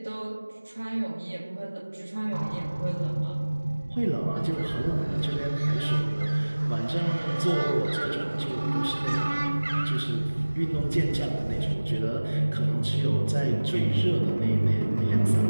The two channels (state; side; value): inverted; both; correlation -1.00